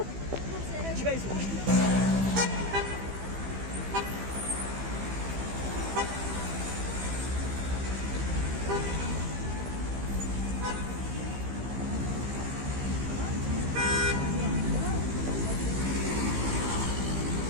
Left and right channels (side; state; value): left; late; 15 ms